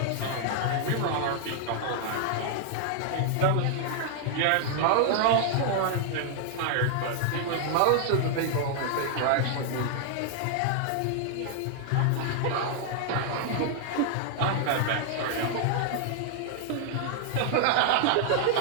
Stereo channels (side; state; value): both; different; correlation 0.00